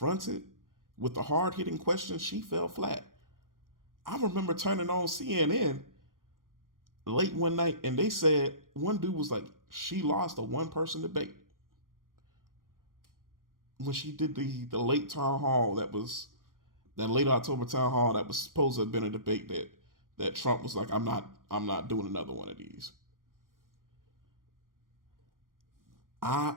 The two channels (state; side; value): late; left; 0.90 ms